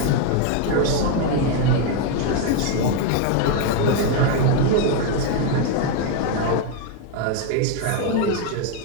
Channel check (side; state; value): both; different; correlation 0.01